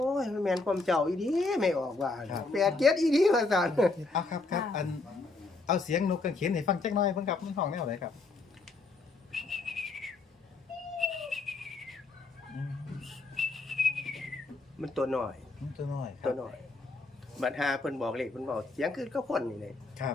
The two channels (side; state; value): right; quieter; 3.6 dB